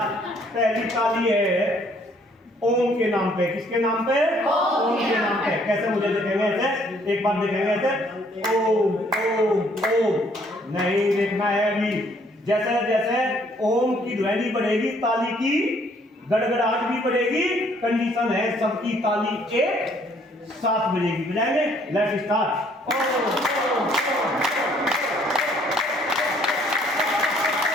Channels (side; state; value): both; normal; correlation 0.63